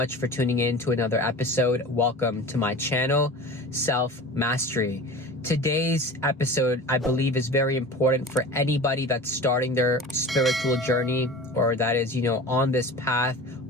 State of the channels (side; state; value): both; normal; correlation 0.35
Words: for tuning in to another episode. Welcome to my channel, Self Mastery. Today's episode, I believe, is very important for anybody that's starting their spiritual journey, or that is, on this path,